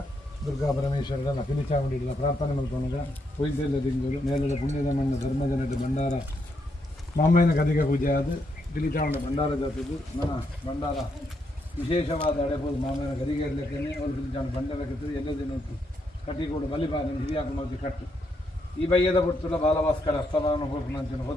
ದುರ್ಗಾ ಪರಮೇಶ್ವರರ ಪಿಲಿಚಾಮುಂಡಿ ಇಡಲ ಪ್ರಾರ್ಥನೆ ಮಲ್ಪನಗ ಪೊಯ್ದೆಲ್ಲ ದಿಂಗುಲು ನೇಲದ ಪುಣ್ಯದ ಮಣ್ಣ ಧರ್ಮದ ನಡು ಭಂಡಾರ ಮಾಮಯ್ಯನ ಗದಿಗೆ ಪೂಜೆ ಆದ ಪಿಲಿಚಾಮುಂಡ ಭಂಡಾರ ಜಾತದ್ದು ನನ್ನ ಭಂಡಾರ ವಿಶೇಷವಾದ ಅಡೆಬೋದು ಮಾಮಯ್ಯನ ಗದಿಗೆ ಇರಲಿಕ್ಕೆ ಅವ್ರು ಪಿಲಿಚಾಮುಂಡ ಭಂಡಾರ ಕಟ್ಟಿದ್ದು ಎಲ್ಲದೇ ನೋಡ್ತು ಕಟ್ಟಿಕೊಂಡು ಬಲಿಪಾನ ಹಿರಿಯಾಕ ಮಲ್ತಿ ಕಟ್ಟು ಈ ಬಯ್ಯದ ಬಿಡ್ತಲ್ಲ ಬಾಲಭಾಸ್ಕರ ಅಸ್ತಮಾನ ಹೋಗ್ನಂಚಿನ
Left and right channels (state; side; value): normal; both; correlation 0.78